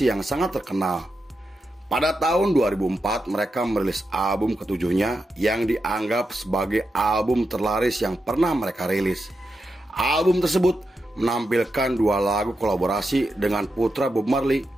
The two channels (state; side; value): normal; both; correlation 0.87